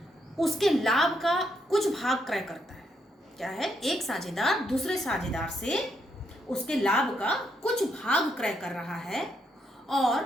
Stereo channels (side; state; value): both; normal; correlation 0.77